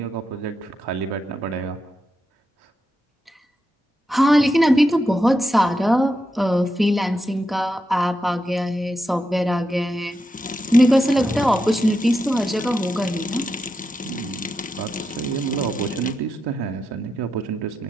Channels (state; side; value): normal; both; correlation 0.86